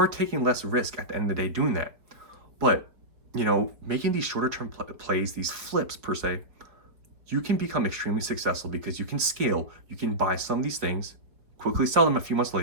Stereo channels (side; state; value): left; late; 4.6 ms